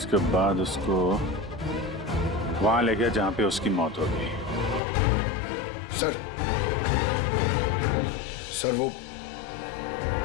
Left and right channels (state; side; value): drops out; right; at 4.8 s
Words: बाद उसको वहां ले गया जहां पे उसकी मौत हो गई। सर वो